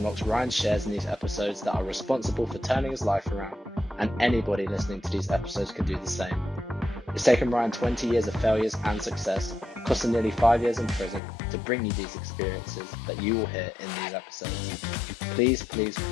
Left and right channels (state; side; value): drops out; right; at 11.2 s